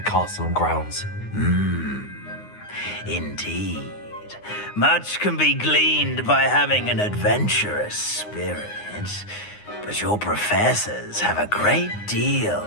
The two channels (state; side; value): late; right; 9.7 ms